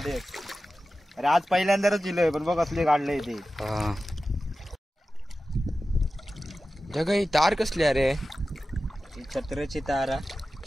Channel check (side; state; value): both; normal; correlation 0.94